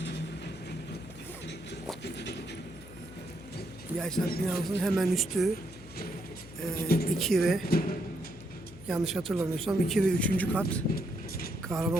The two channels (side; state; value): left; noise; hum, 17 dB below the sound